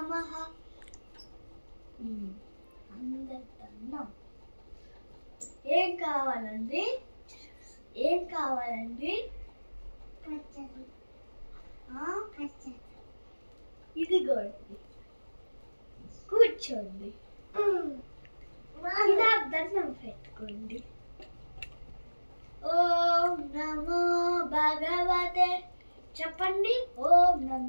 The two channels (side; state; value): both; inverted; correlation -1.00